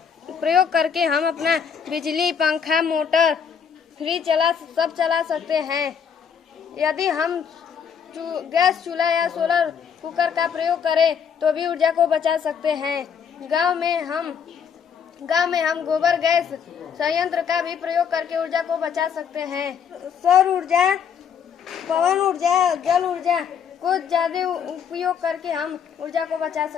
करके हम अपना बिजली, पंखा, मोटर, फ्रिज चला सकते हैं। यदि हम गैस चूल्हा या सोलर कुकर का प्रयोग करें तो भी ऊर्जा को बचा सकते हैं। गांव में हम गोबर गैस संयंत्र का भी प्रयोग करके ऊर्जा को बचा सकते हैं। सौर ऊर्जा, पवन ऊर्जा, जल ऊर्जा को ज्यादा उपयोग करके हम ऊर्जा को बचा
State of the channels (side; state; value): right; quieter; 7.3 dB